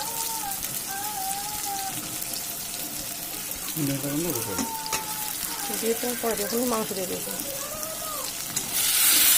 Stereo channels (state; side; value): identical; both; correlation 1.00